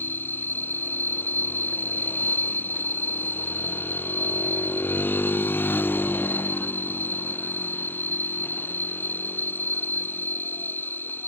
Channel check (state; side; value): late; right; 0.10 ms